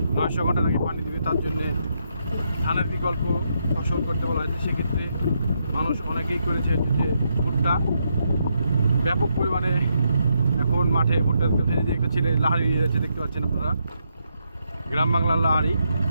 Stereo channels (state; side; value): inverted; both; correlation -0.79